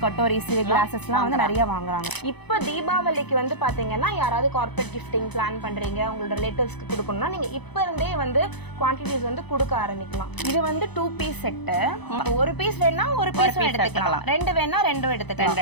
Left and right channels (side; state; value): right; late; 0.99 ms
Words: கட்டோரிஸ், கிளாஸஸ்லாம் வந்து நிறைய வாங்குறாங்க. இப்ப தீபாவளிக்கு வந்து பாத்தீங்கன்னா யாராவது கார்ப்பரேட் கிஃப்டிங் பிளான் பண்றீங்க, உங்களோட ரிலேட்டிவ்ஸ்க்கு கொடுக்கணும்னா நீங்க இப்ப இருந்தே வந்து குவான்டிட்டிஸ் வந்து கொடுக்க ஆரம்பிக்கலாம். இது வந்து 2 பீஸ் செட். ஒரு பீஸ் வேணா ஒரு பீஸ் எடுத்துக்கலாம், 2 வேணா 2